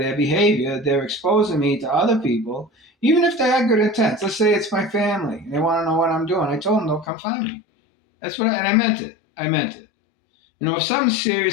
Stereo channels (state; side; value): drops out; right; at 7.1 s